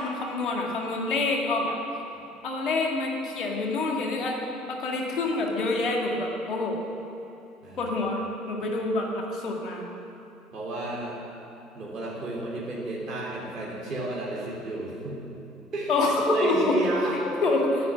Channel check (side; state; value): both; normal; correlation 0.55